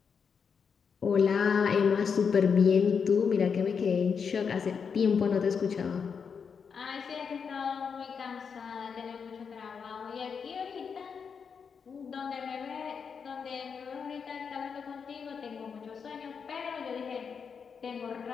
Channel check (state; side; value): quieter; right; 6.2 dB